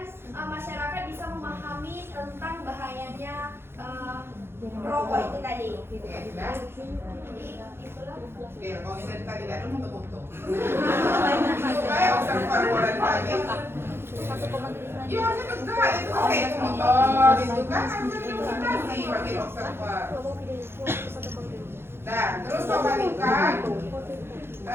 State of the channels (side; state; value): left; late; 0.11 ms